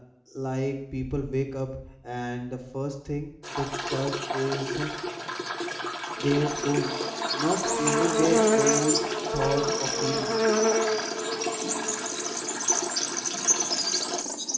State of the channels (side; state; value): both; identical; correlation 1.00